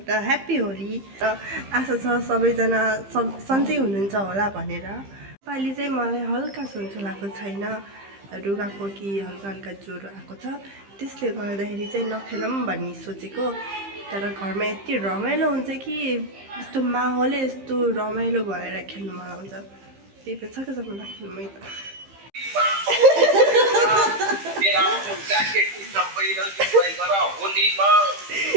ह्याप्पी होली र आशा छ सबैजना सन्चै हुनुहुन्छ होला भनेर पालि चाहिँ मलाई हल्का सन्चो लागेको छैन रुगाखोकी हल्का ज्वरो आएको छ त्यसले गर्दाखेरि चाहिँ नखेलौँ भन्ने सोचेको तर घरमा यति रमाइलो हुन्छ कि यस्तो माहौलै यस्तो रमाइलो भएर खेल्नु मन आउँछ त्यही भएर सकेसम्म राख्नु मै त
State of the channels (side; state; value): left; late; 15 ms